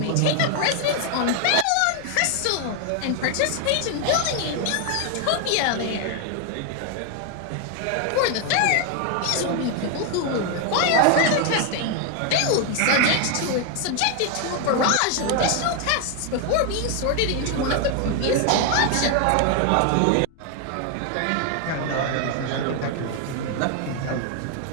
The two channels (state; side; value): different; both; correlation 0.00